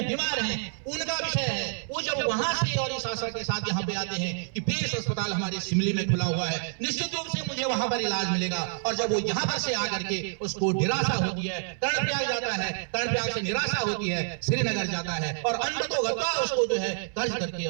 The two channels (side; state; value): left; silent; 59 dB below the other